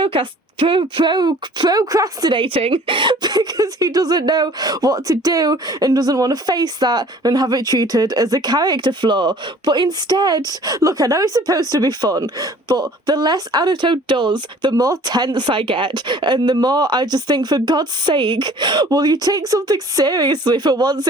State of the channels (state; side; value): normal; both; correlation 0.51